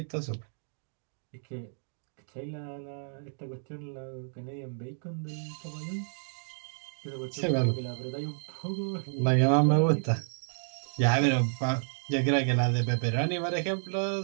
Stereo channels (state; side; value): silent; left; digital silence